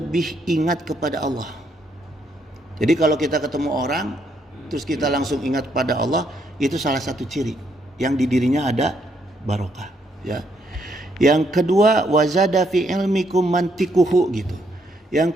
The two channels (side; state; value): both; normal; correlation 0.74